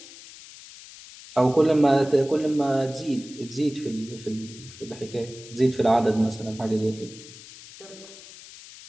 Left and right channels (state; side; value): noise; left; hiss, 17 dB below the sound